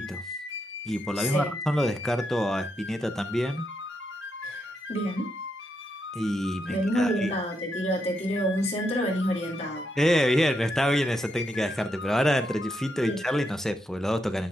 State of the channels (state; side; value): normal; both; correlation 0.81